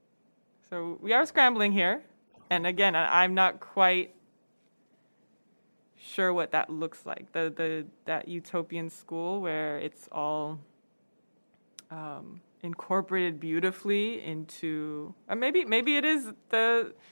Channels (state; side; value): inverted; both; correlation -1.00